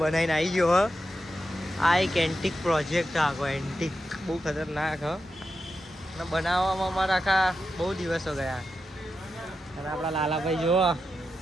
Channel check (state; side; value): normal; both; correlation 0.88